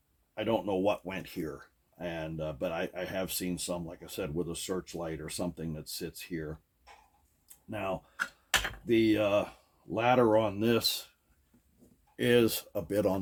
I don't know what went here, and but I have seen some, like I said, with a searchlight or something that sits here. Now, the ladder on this is a bit on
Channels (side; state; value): both; identical; correlation 1.00